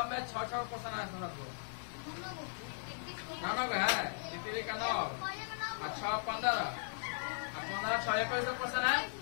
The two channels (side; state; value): right; silent; digital silence